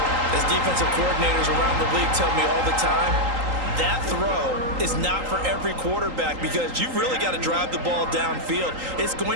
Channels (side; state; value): left; late; 3.8 ms